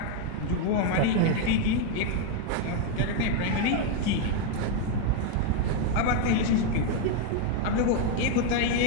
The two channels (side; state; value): both; different; correlation 0.01